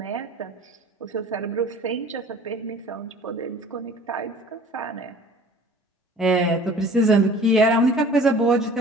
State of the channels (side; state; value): both; normal; correlation 0.48